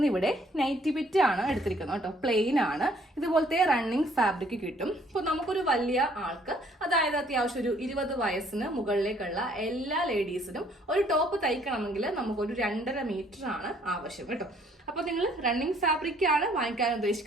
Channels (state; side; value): normal; both; correlation 0.62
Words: നൈറ്റി ബിറ്റ് ആണ് എടുത്തിരിക്കുന്നത് കേട്ടോ. പ്ലെയിൻ ആണ്. ഇതുപോലത്തെ റണ്ണിങ് ഫാബ്രിക് കിട്ടും. ഇപ്പൊ നമുക്കൊരു വലിയ ആൾക്ക്, അതായത് അത്യാവശ്യം ഒരു 20 വയസ്സിന് മുകളിലേക്കുള്ള എല്ലാ ലേഡീസിനും ഒരു ടോപ്പ് തയ്ക്കണമെങ്കിൽ നമുക്കൊരു 2.5 മീറ്റർ ആണ് ആവശ്യം കേട്ടോ. അപ്പൊ നിങ്ങൾ റണ്ണിങ് ഫാബ്രിക് ആണ് വാങ്ങിക്കാൻ